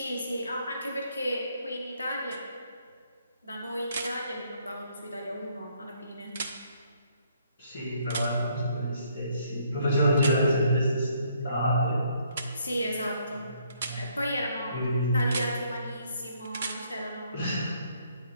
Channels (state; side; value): inverted; both; correlation -0.68